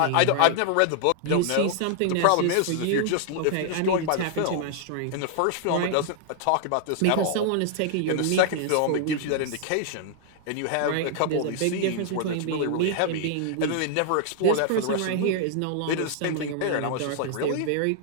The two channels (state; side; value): different; both; correlation -0.01